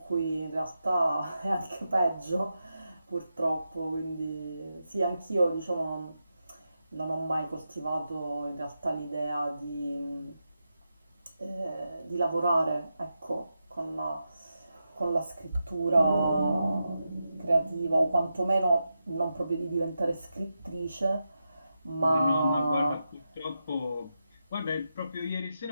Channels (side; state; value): both; inverted; correlation -0.88